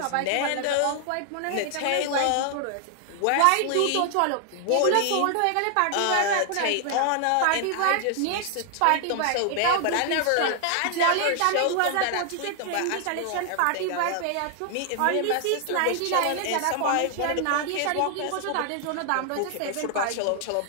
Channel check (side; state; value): both; different; correlation 0.00